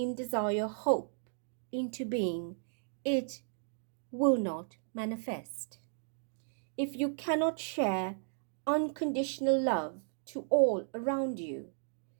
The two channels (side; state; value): left; silent; digital silence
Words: desire, hope into being, it will not manifest. If you cannot share unconditional love to all around you,